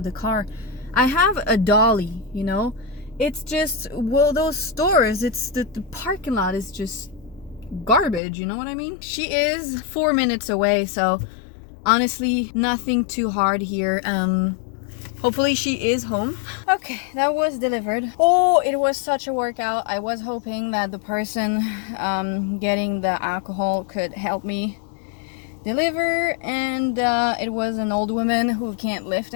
the car. I have a dolly, you know? It's just, well, those stores, it's the parking lot is just garbage, you know what I mean? She is 4 minutes away, so honestly, nothing too hard here. Hopefully she is home. Okay, that was delivered. Oh, it was such a workout. I was hoping that the person getting the alcohol could help me deliver, and it was an old woman who can't lift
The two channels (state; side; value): drops out; right; at 8.2 s